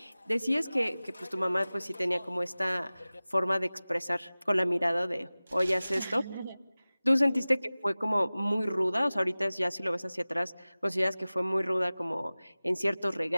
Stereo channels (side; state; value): both; inverted; correlation -0.98